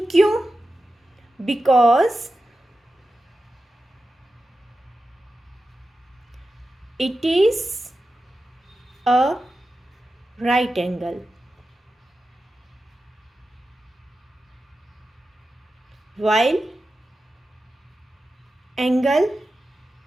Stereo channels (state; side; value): normal; both; correlation 0.92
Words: क्यों, because it is a right angle, while angle